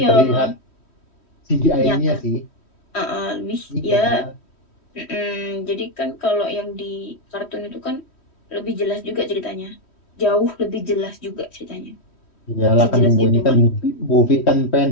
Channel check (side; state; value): right; late; 3.1 ms